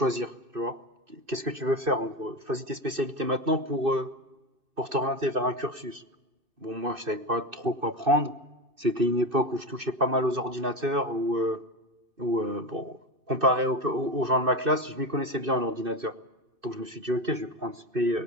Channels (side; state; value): left; late; 2.6 ms